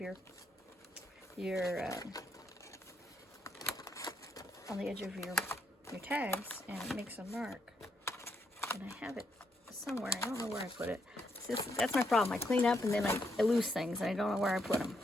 your on the edge of your tags and it makes a mark. And I have it somewhere. I don't know where I put it. That's my problem. I clean up and then I lose things and I don't know where I put them.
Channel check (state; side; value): normal; both; correlation 0.77